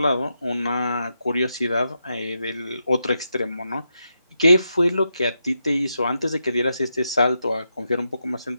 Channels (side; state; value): both; inverted; correlation -0.85